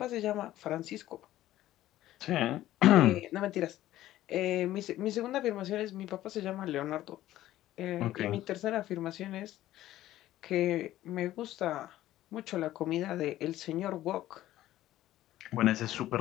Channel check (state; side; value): quieter; right; 14.4 dB